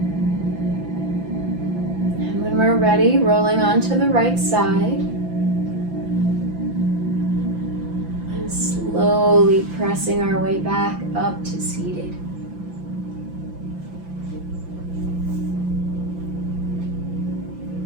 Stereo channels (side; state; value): left; late; 5.9 ms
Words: And when we're ready, rolling onto the right side and slowly pressing our way back up to seated.